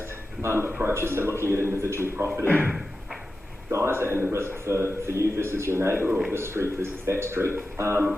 approaches, so looking at individual property guys and the risk for you versus your neighbour, or this street versus that street.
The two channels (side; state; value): both; normal; correlation 0.92